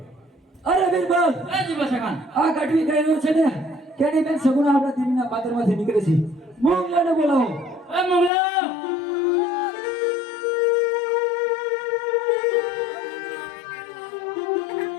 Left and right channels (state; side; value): drops out; right; at 8.3 s